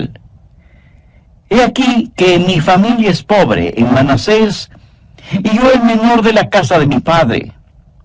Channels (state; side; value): identical; both; correlation 1.00